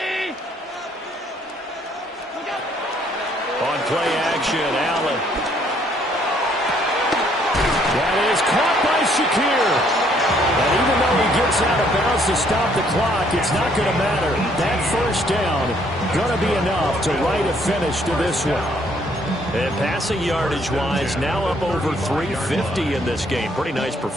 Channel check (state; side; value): normal; both; correlation 0.66